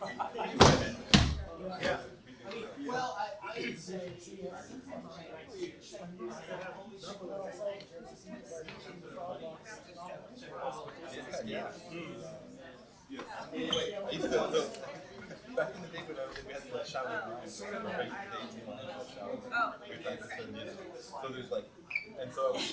Yeah. well, I would say Yeah. I used to, back in the day when we had the shower line, shower. So there's like, and so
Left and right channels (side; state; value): both; identical; correlation 1.00